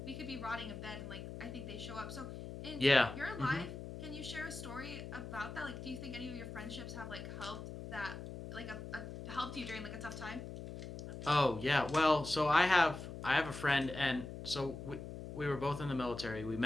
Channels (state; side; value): noise; left; hum, 9 dB below the sound